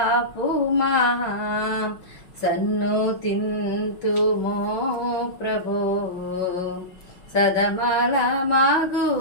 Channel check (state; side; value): late; right; 5.8 ms